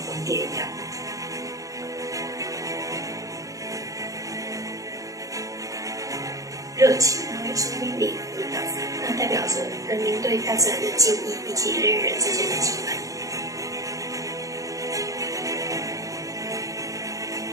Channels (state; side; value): late; left; 0.16 ms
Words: 蝶一样。热情，然后有生命力的舞蹈，那代表着人民对大自然的敬意以及人与人之间的羁绊。